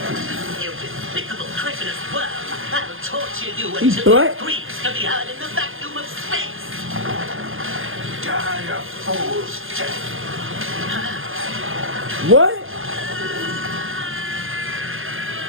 You despicable cretinous worm! I'll torture you He's until black. it screams to be heard in the vacuum of space! Die a fool's death. What?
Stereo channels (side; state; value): left; late; 0.59 ms